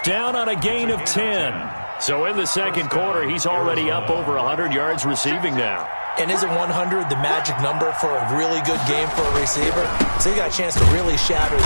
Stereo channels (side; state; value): both; inverted; correlation -1.00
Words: down on a gain of 10. So in the 2nd quarter, he's already up over 100 yards receiving now. And isn't 100 the magic number for a really good game for a receiver? So you got a chance to really shatter